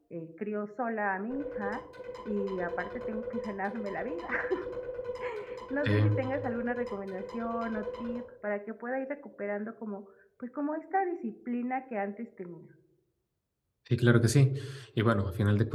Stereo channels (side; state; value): both; identical; correlation 1.00